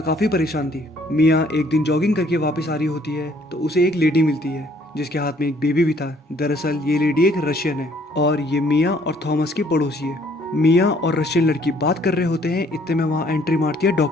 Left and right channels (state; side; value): normal; both; correlation 0.62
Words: काफी परेशान थी। मिया एक दिन जॉगिंग करके वापस आ रही होती है तो उसे एक लेडी मिलती है जिसके हाथ में एक बेबी भी था। दरअसल ये लेडी एक रशियन है और ये मिया और थॉमस की पड़ोसी है। मिया और रशियन लड़की बात कर रहे होते हैं, इतने में वहाँ एंट्री मारती है